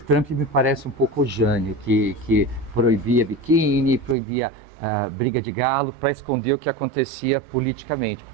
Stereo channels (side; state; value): left; drops out; at 4.2 s